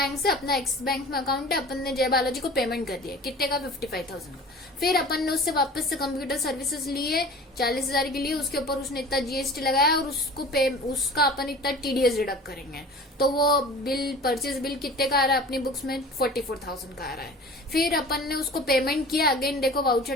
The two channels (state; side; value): normal; both; correlation 0.41